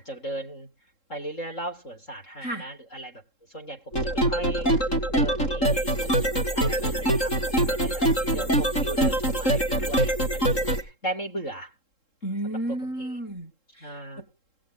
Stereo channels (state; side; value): late; right; 3.7 ms